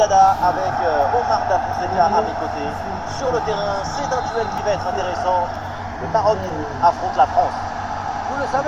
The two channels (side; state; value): both; identical; correlation 1.00